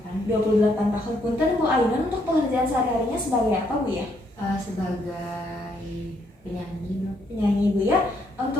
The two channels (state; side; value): normal; both; correlation 0.72